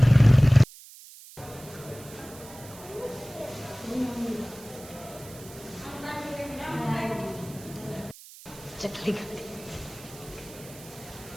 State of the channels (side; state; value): right; noise; hiss, 18 dB below the sound